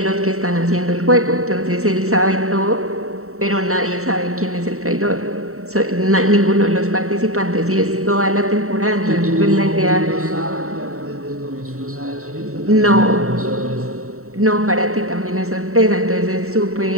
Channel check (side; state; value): left; late; 0.64 ms